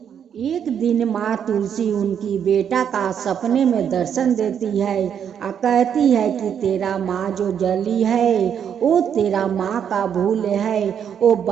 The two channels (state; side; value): quieter; left; 8.3 dB